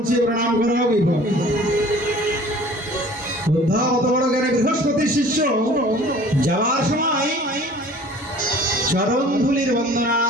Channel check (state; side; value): normal; both; correlation 0.48